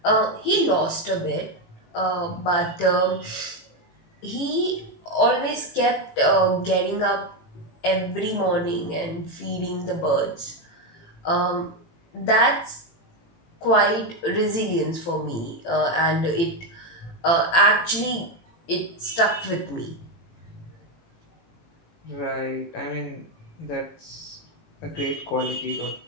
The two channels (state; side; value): late; right; 18 ms